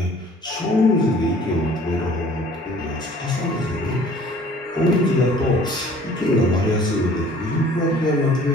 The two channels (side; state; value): both; normal; correlation 0.52